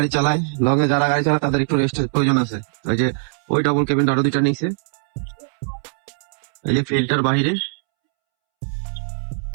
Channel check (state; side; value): silent; left; 65 dB below the other